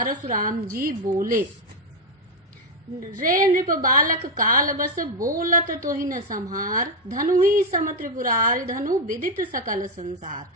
जी बोले, रे नृप बालक काल बस बोलत तो ही न संहार, धनु ही सम त्रिपुरारि धनु विदित सकल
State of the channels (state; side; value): normal; both; correlation 0.04